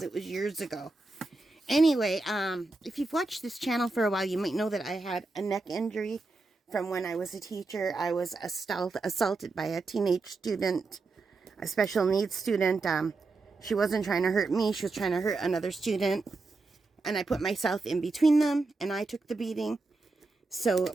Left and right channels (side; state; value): left; quieter; 3.5 dB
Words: it was years ago. Anyway, if you've watched this channel for a while, you might know that I had a neck injury from when I was a teacher. I was assaulted by a teenage student, a special needs student. She wasn't trying to hurt me. She was trying to hurt another student. And I put myself in between them, and I took the beating. So